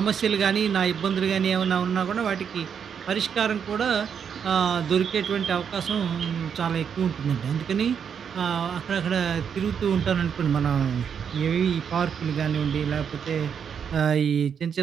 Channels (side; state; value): left; quieter; 7.4 dB